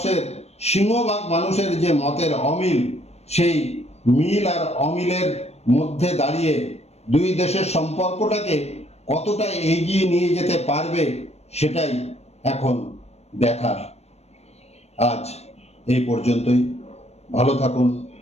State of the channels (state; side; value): late; right; 0.31 ms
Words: সিংহভাগ মানুষের যে মতের অমিল, সেই মিল আর অমিলের মধ্যে দাঁড়িয়ে দুই দেশের সম্পর্কটাকে কতটা এগিয়ে নিয়ে যেতে পারবে, সেটাই এখন দেখার। আজ এই পর্যন্তই। ভালো থাকুন,